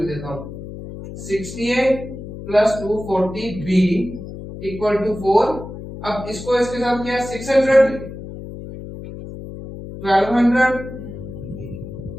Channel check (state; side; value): noise; left; hum, 11 dB below the sound